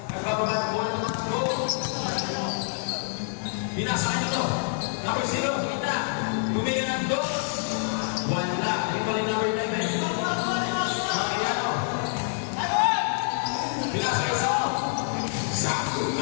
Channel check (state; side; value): silent; right; digital silence